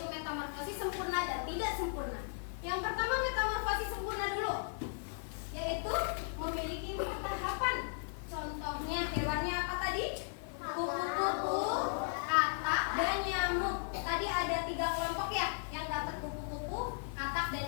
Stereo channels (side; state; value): right; silent; digital silence